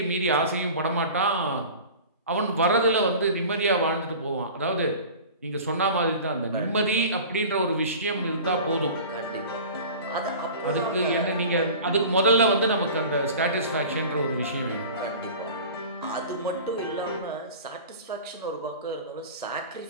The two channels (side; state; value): both; inverted; correlation -0.38